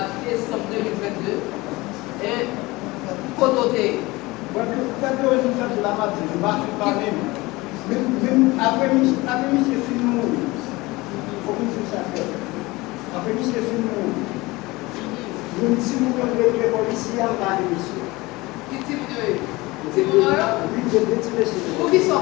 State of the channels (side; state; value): right; quieter; 21.6 dB